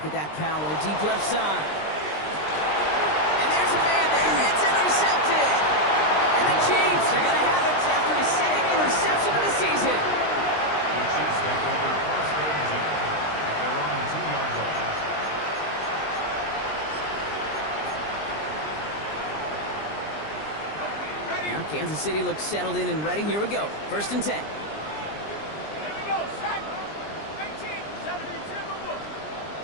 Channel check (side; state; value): right; late; 20 ms